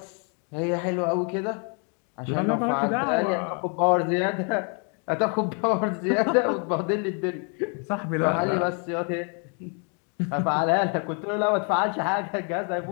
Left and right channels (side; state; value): right; quieter; 38.4 dB